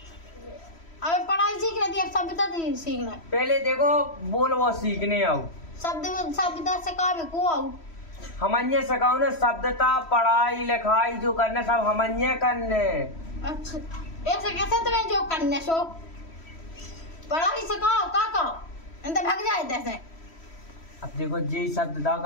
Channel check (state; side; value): late; right; 3.1 ms